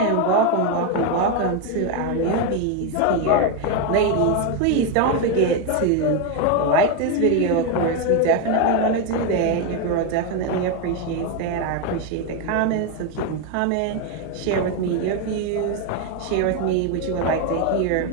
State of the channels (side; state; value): both; different; correlation 0.02